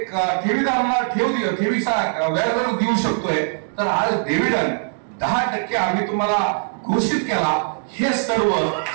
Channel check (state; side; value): silent; left; digital silence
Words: ठेवीदाराला ठेवीचा व्याजदर देऊ शकतोय तर आज डिव्हिडंड 10% आम्ही तुम्हाला घोषित केला. हे सर्व